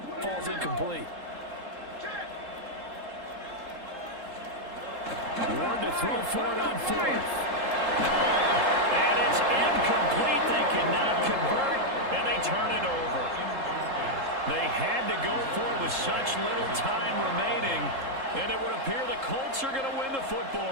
falls incomplete. Ward to throw for it on 4th. And it's incomplete. They cannot convert, and they turn it over. They had to go for it with such little time remaining, and it would appear the Colts are going to win the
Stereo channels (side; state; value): left; late; 3.7 ms